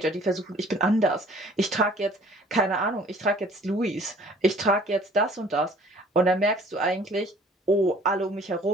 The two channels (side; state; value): both; normal; correlation 0.53